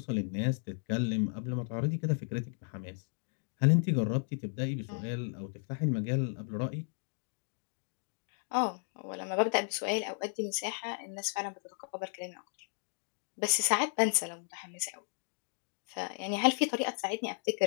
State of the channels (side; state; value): right; silent; 55 dB below the other